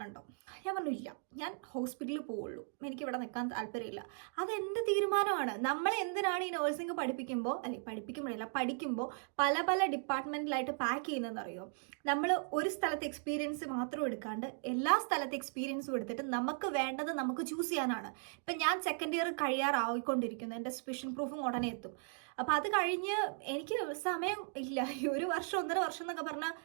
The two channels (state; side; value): silent; left; 53 dB below the other